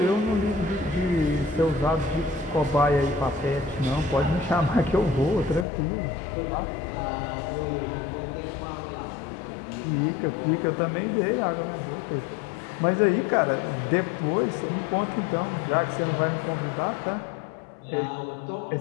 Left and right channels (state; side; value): drops out; right; at 5.7 s